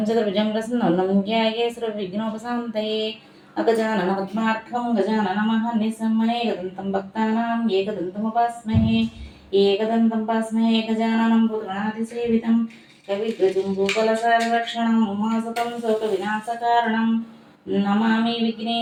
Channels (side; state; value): both; identical; correlation 1.00